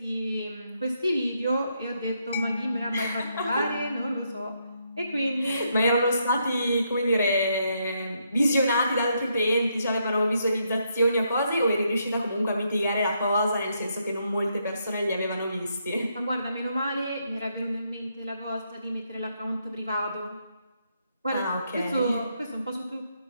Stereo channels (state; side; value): inverted; both; correlation -0.77